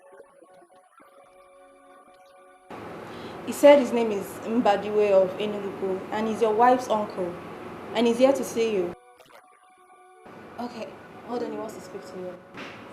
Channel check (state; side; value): identical; both; correlation 1.00